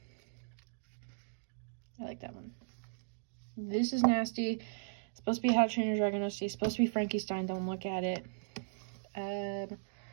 I like that one. This is nasty. It's supposed to be How to Train Your Dragon OC. It's supposed to be Frankenstein. Don't look at it.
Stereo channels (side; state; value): left; silent; digital silence